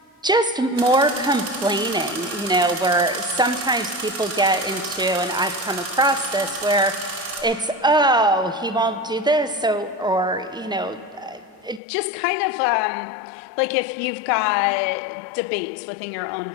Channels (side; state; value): right; drops out; at 11.8 s